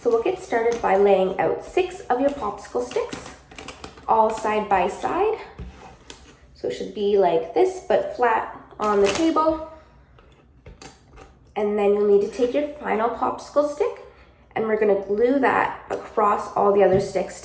we'll get started by laying out 6 of your popsicle sticks, all side by side. So it should be like this, but flat on the table. And then you'll need to take your final popsicle stick and we're gonna glue that across all the other sticks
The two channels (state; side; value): identical; both; correlation 1.00